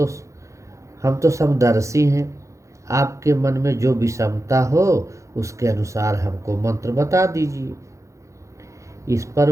हम तो समदर्शी हैं। आपके मन में जो विषमता हो उसके अनुसार हमको मंत्र बता दीजिए। इस पर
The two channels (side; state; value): left; late; 0.15 ms